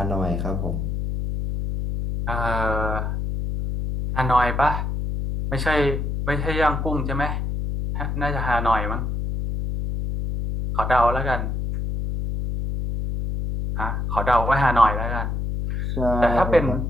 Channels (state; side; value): noise; left; hum, 2 dB below the sound